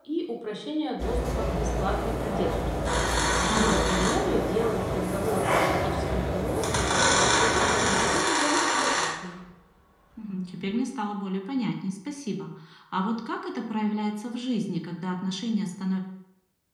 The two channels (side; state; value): both; identical; correlation 1.00